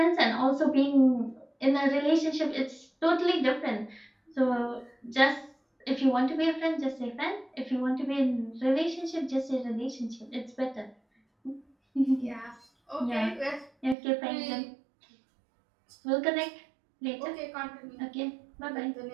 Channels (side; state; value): left; drops out; at 14.0 s